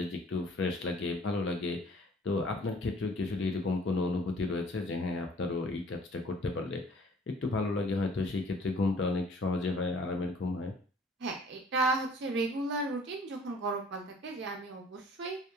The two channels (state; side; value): normal; both; correlation 0.54